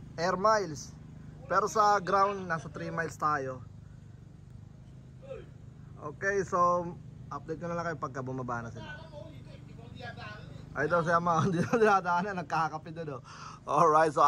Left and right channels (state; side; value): identical; both; correlation 1.00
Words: air miles. Pero sa ground nasa 3 miles tayo. Okay, so update ko na lang kayo pagka bumaba na sila. Ay daw siya mga hindi na dinadaanan, nagkakape doon Alright, so